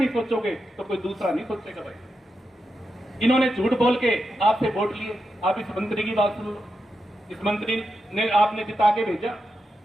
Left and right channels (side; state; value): both; normal; correlation 0.87